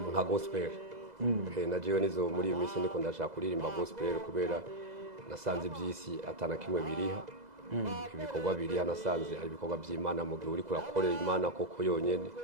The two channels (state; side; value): late; left; 2.0 ms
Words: nka gospel. Na jewe nizo muri iyi minsi ndiko ndashaka kuririmba gospel kubera nasanze iby'isi atana kimwe biriha. Ibikorwa biriha nasanze ari ibikorwa by'Imana mu gihe uri kurakorera Imana koko yonyene